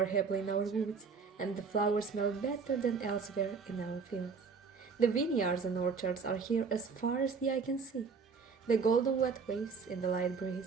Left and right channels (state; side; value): quieter; left; 5.2 dB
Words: happily in our woods, and the flowers smell better than elsewhere in our fields. The vineyards and orchards are here as far as the eye can see. The golden wet waves in the light